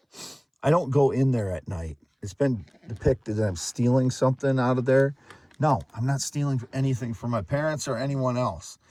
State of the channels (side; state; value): both; identical; correlation 1.00